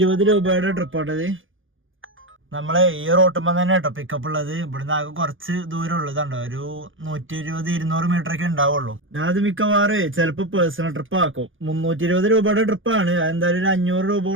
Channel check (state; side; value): late; left; 0.58 ms